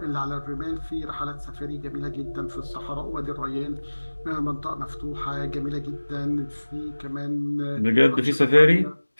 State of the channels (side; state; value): both; inverted; correlation -1.00